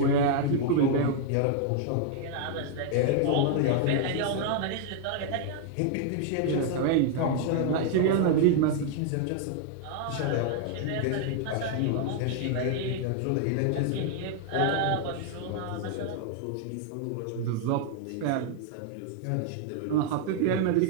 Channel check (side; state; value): both; different; correlation 0.00